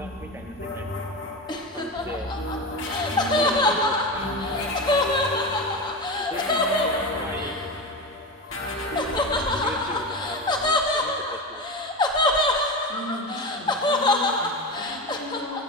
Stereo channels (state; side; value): normal; both; correlation 0.22